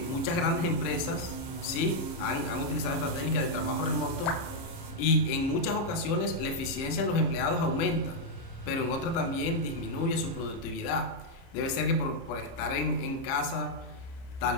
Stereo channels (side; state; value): right; late; 30 ms